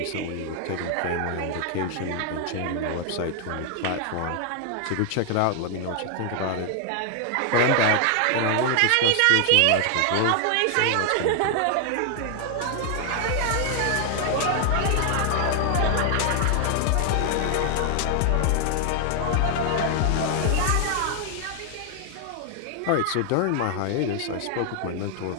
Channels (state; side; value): different; both; correlation 0.00